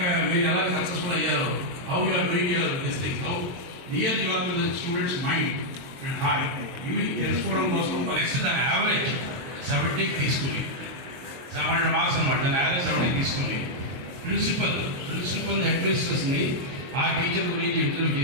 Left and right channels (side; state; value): left; late; 22 ms